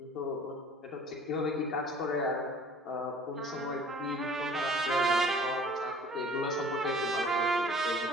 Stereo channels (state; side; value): normal; both; correlation 0.49